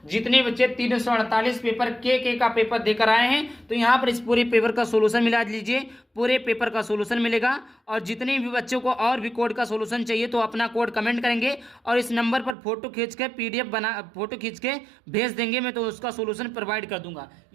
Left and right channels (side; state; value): left; drops out; at 12.6 s